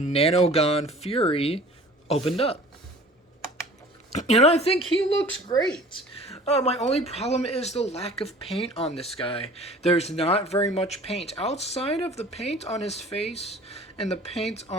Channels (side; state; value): both; normal; correlation 0.47